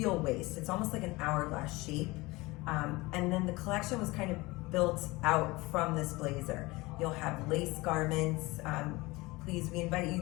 waist. It's almost like an hourglass shape. And then the collection was kind of built out from this blazer. You'll have lace garments. Please, we invite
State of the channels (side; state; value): right; quieter; 22.1 dB